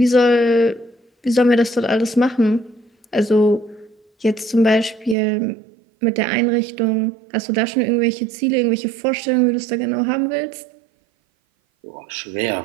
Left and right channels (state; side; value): drops out; left; at 5.2 s